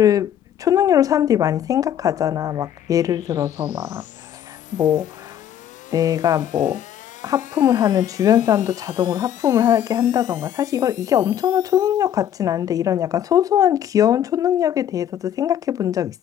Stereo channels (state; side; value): quieter; right; 10.2 dB